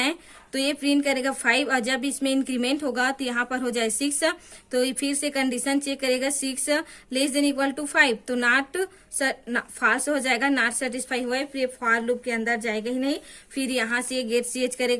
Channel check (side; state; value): both; identical; correlation 1.00